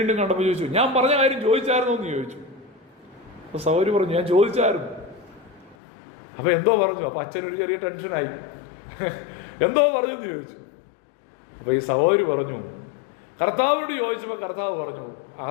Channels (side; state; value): right; drops out; at 5.8 s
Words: കണ്ടപ്പോൾ ചോദിച്ചു, ഞാൻ പറഞ്ഞ കാര്യം ചോദിച്ചായിരുന്നോ എന്ന് ചോദിച്ചു. അപ്പോൾ സഹോദരി പറഞ്ഞു, ഞാൻ ചോദിച്ചായിരുന്നു. അപ്പോൾ എന്തോ പറഞ്ഞു. അപ്പോൾ അച്ഛനൊരു ചെറിയ ടെൻഷനായി. എന്തോ പറഞ്ഞു എന്ന് ചോദിച്ചു. അപ്പോൾ ഈ സഹോദരി പറഞ്ഞു, കർത്താവിനോട് ചോദിച്ചപ്പോൾ കർത്താവ് പറഞ്ഞു,